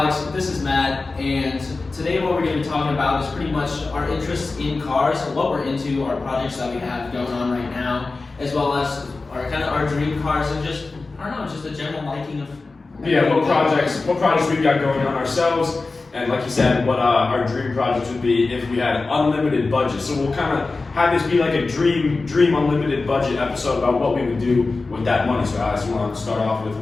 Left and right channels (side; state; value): right; quieter; 3.7 dB